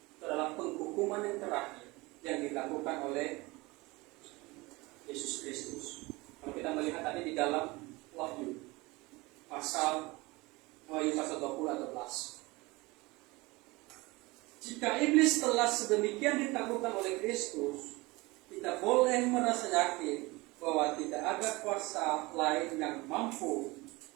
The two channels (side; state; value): left; quieter; 22.9 dB